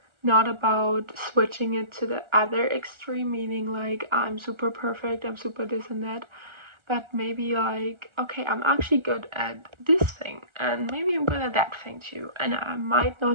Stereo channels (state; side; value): late; left; 1.4 ms